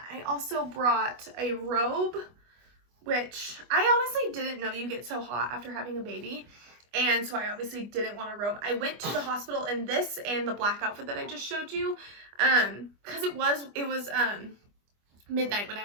I also brought a robe, which I honestly didn't know you get so hot after having a baby. And so I obviously didn't want a robe. I went to the hospital in this and the black outfit that I just showed you, because it was midnight when I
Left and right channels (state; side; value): late; left; 25 ms